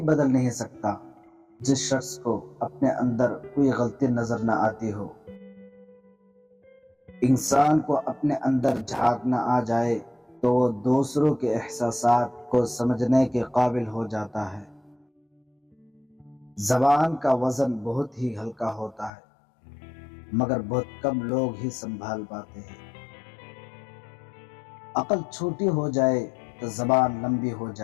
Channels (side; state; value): right; drops out; at 19.1 s